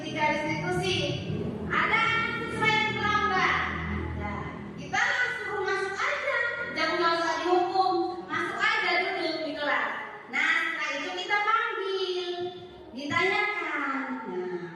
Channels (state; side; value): identical; both; correlation 1.00